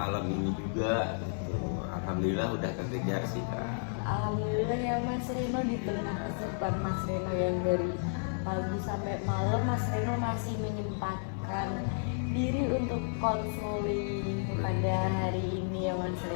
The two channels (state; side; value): silent; right; 56 dB below the other